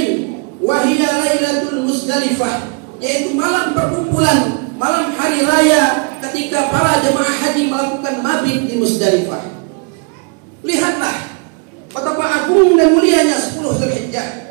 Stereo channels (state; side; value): quieter; left; 35.8 dB